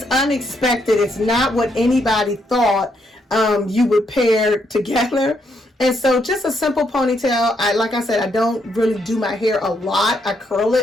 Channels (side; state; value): both; normal; correlation 0.76